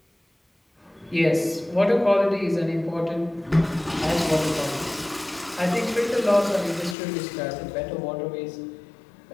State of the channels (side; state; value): right; drops out; at 7.0 s